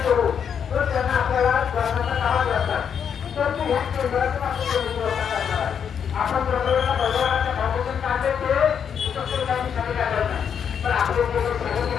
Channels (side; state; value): right; quieter; 7.7 dB